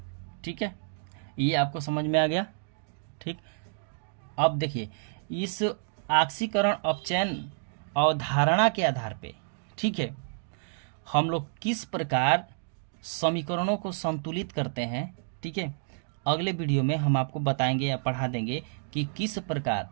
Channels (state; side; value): silent; left; digital silence